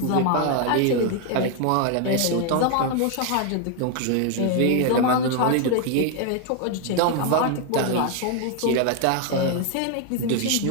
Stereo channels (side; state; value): both; different; correlation 0.01